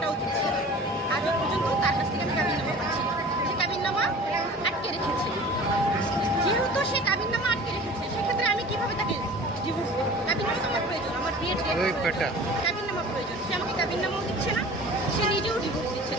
দিচ্ছে আজও পর্যন্ত তার কাছ থেকে আমি কাবিননামা পাচ্ছি সে কাবিননামা আটকে রেখেছে যেহেতু সে কাবিননামা আটকে রেখেছে সেক্ষেত্রে আমি কীভাবে তাকে ডিভোর্স দেবো কাবিননামা আমার প্রয়োজন আমার বিয়ের কাবিননামা প্রয়োজন সে আমাকে কাবিননামাও দিচ্ছে না সে নিজেও ডিভোর্স দিচ্ছে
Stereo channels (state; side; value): normal; both; correlation 0.42